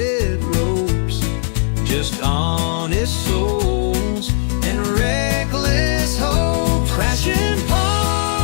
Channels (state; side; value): silent; right; digital silence